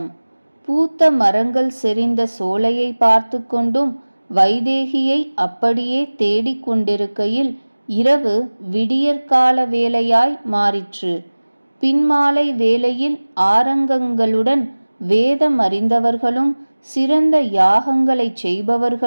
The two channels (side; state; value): both; inverted; correlation -1.00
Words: பூத்த மரங்கள் செறிந்த சோலையை பார்த்து கொண்டும் வைதேகியை அப்படியே தேடிக் கொண்டிருக்கையில் இரவு விடியற்கால வேளையாய் மாறிற்று. பின்மாலை வேளையில் ஆரங்கங்களுடன் வேதம் அறிந்தவர்களும் சிறந்த யாகங்களைச்